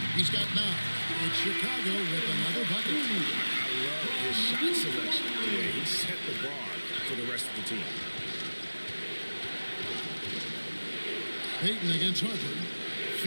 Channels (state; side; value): inverted; both; correlation -1.00